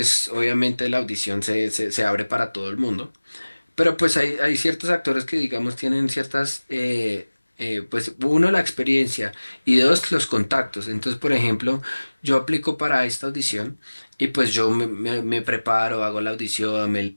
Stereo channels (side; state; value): both; inverted; correlation -1.00